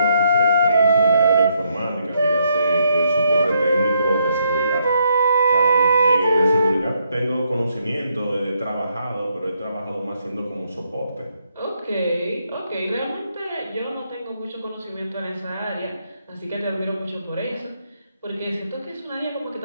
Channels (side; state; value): both; inverted; correlation -0.75